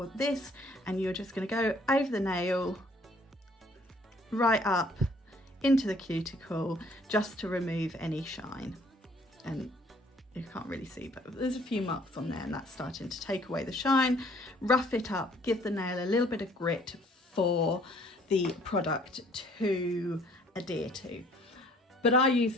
this, and you're just going to go over the nail, right up into the cuticle, just to remove any shine. And you can't really see, but there's a few marks on there, and that's starting to take away the shine. Rough it up, give the nail a little bit of grit for the product to adhere to. But I use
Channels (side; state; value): both; normal; correlation 0.58